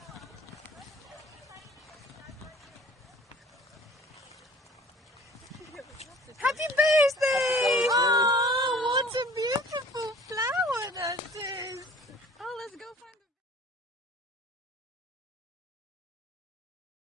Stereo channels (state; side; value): normal; both; correlation 0.49